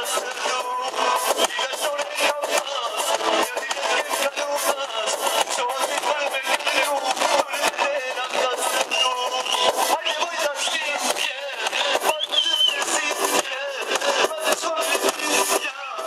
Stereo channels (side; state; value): both; identical; correlation 1.00